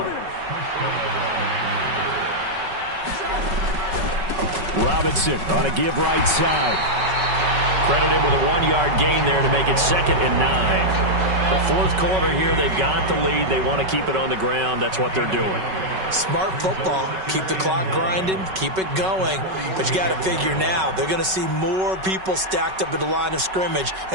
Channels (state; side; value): late; left; 5.3 ms